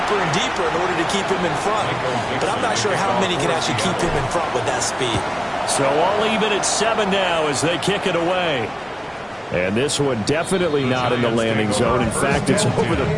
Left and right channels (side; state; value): both; identical; correlation 1.00